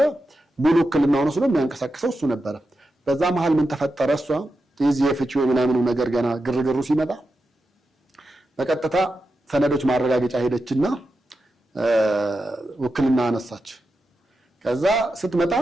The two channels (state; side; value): normal; both; correlation 0.89